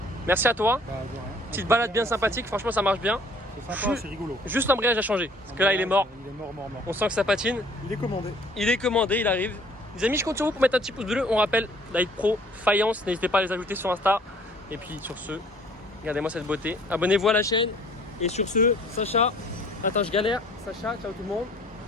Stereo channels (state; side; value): normal; both; correlation 0.55